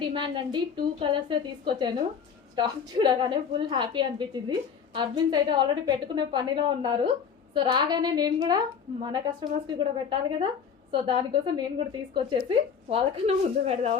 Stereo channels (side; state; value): right; quieter; 6.9 dB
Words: డిమాండ్ అండి. 2 కలర్సే తీసుకొచ్చాను. స్టాక్ చూడగానే ఫుల్ హ్యాపీ అనిపించింది. అడ్మిన్స్ అయితే ఆల్రెడీ పెట్టుకునే పనిలో ఉన్నారు. సో రాగానే నేను కూడా మన కస్టమర్స్కి కూడా పెట్టాలి కదా. సో దానికోసం నేను కూడా తీసుకొచ్చేసి వాళ్ళకన్నా ముందు